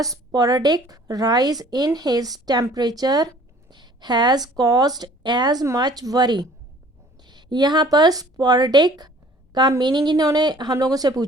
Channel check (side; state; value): both; normal; correlation 0.53